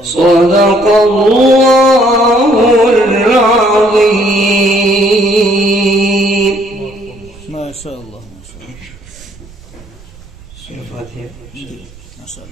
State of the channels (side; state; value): right; noise; rumble, 22 dB below the sound